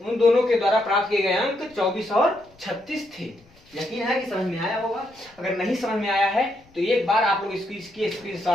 दोनों के द्वारा प्राप्त किए गए अंक 24 और 36 थे। यकीन है कि समझ में आया होगा। अगर नहीं समझ में आया है तो एक बार आप लोग इसकी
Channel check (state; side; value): noise; left; rumble, 30 dB below the sound